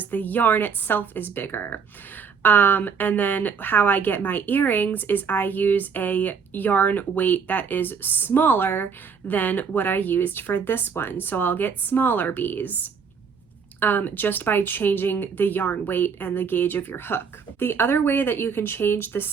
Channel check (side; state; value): left; quieter; 6.1 dB